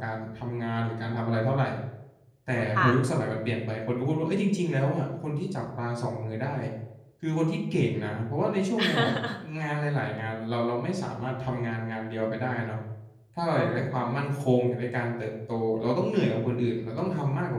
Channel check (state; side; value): identical; both; correlation 1.00